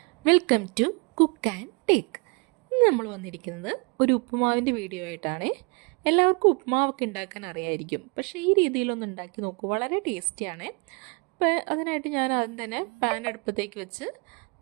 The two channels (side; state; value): left; quieter; 32.4 dB